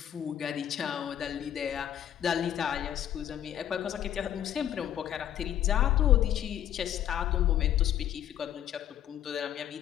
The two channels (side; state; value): right; quieter; 10.9 dB